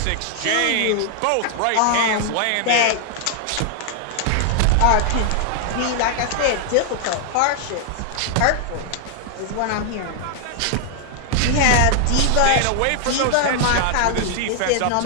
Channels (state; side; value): different; both; correlation 0.00